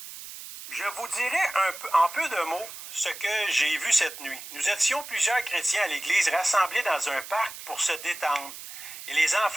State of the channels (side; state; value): right; noise; hiss, 12 dB below the sound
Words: Je vous dirai en peu de mots ce que j'ai vu cette nuit. Nous étions plusieurs chrétiens à l'église rassemblés dans un parc pour se détendre. Et les